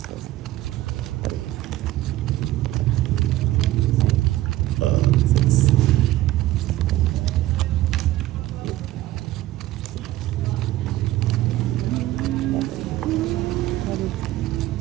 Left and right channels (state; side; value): quieter; left; 15.7 dB